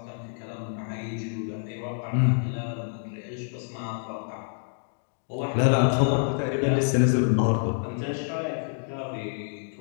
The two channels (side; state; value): right; silent; digital silence